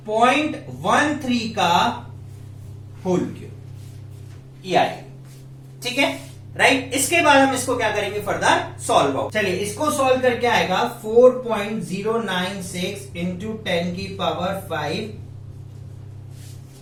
0.13 का होल क्यूब, ये आएगी, ठीक है, राइट। इसके बाद हम इसको क्या करेंगे, फर्दर सॉल्व आउट। चलिए, इसको सॉल्व करके आएगा 4.096 इंटू 10 की पावर 5,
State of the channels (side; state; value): both; identical; correlation 1.00